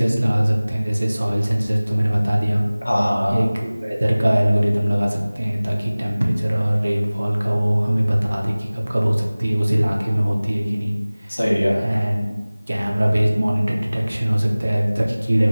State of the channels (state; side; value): inverted; both; correlation -0.99